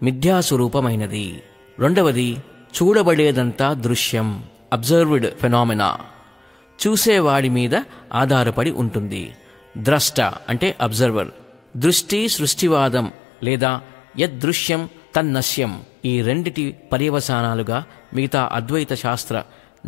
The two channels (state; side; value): drops out; right; at 13.1 s